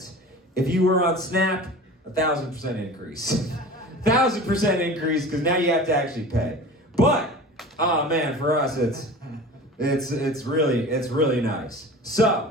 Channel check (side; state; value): both; normal; correlation 0.37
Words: If you were on Snap, 1,000% increase. 1,000% increase, because now you have to actually pay. But oh man, for us it's really nice.